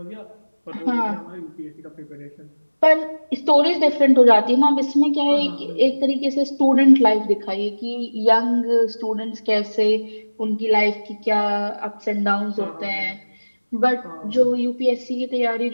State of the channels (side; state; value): both; inverted; correlation -1.00